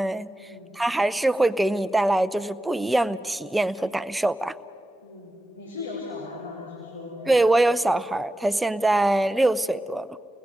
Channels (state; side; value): normal; both; correlation 0.93